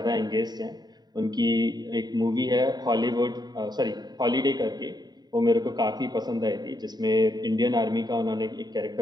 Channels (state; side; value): late; left; 0.20 ms